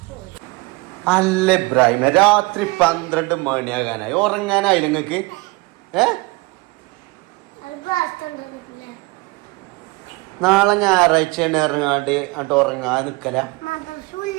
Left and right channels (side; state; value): left; quieter; 24.4 dB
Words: അല്ല ഇബ്രാഹിമ, രാത്രി 12 മണിയാകാനായി, ഉറങ്ങാനായി നിങ്ങക്ക്? നാളെ ഞായറാഴ്ചയാണ് ഇറങ്ങാണ്ട് അങ്ങോട്ട് ഉറങ്ങാൻ നിക്കല.